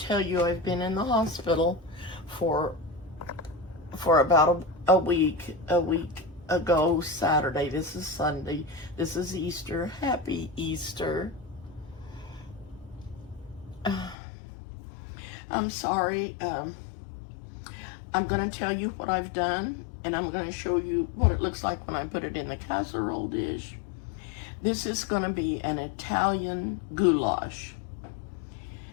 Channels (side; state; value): right; drops out; at 14.2 s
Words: you I've been in the hospital for about a week ago Saturday. This is Sunday. This is Easter. Happy Easter. I'm sorry. I'm going to tell you what I've done, and I'm going to show you what it looks like when I put it in the casserole dish. This is going to be an Italian goulash.